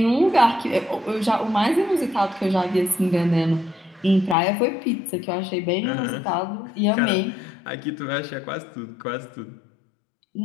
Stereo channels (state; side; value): drops out; right; at 4.4 s